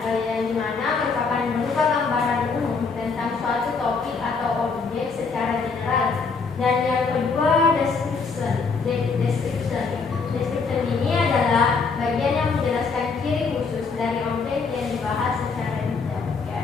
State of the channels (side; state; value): right; quieter; 4.8 dB